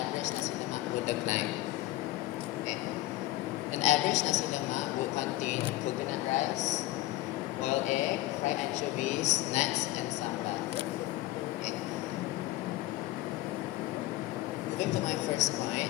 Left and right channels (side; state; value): right; quieter; 17.1 dB